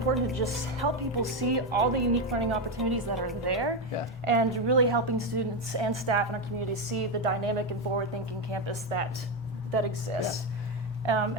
to just help people see all the unique learning opportunities that are there, and really helping students and staff in our community see the dynamic and forward-thinking campus that exists.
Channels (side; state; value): both; normal; correlation 0.09